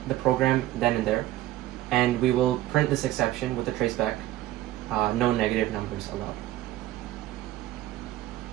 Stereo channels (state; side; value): quieter; left; 15.2 dB